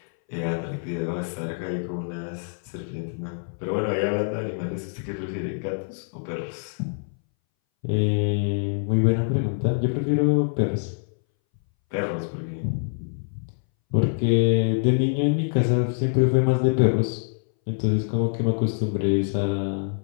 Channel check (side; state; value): right; silent; 61 dB below the other